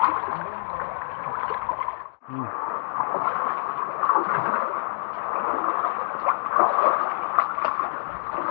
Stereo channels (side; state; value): right; silent; digital silence